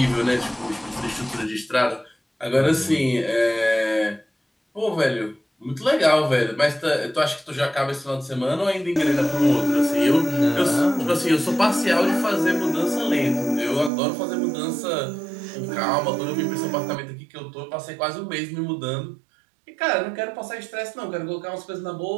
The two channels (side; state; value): left; drops out; at 13.9 s